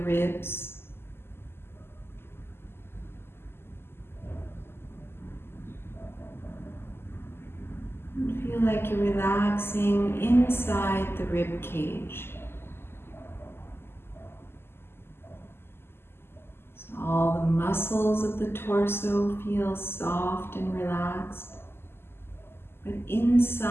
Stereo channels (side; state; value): right; late; 0.12 ms